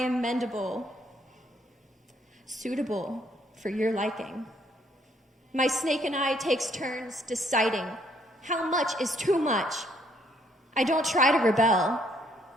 mendable, suitable for your liking. My snake and I takes turns deciding how much is too much. I don't try to rebel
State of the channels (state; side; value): normal; both; correlation 0.67